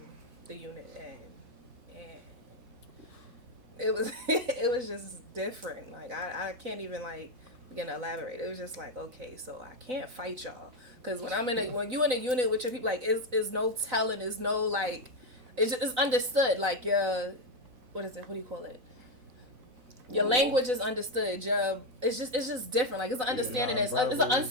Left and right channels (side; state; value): left; late; 4.0 ms